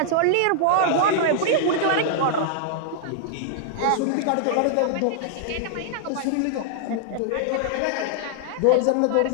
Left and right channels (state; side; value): different; both; correlation -0.01